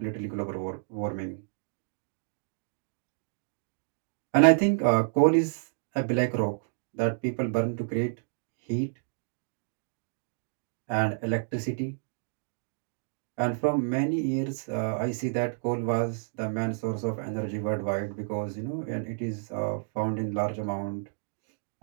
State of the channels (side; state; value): left; silent; digital silence